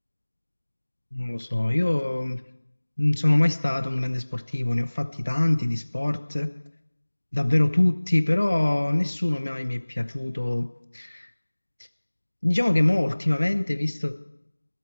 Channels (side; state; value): both; inverted; correlation -1.00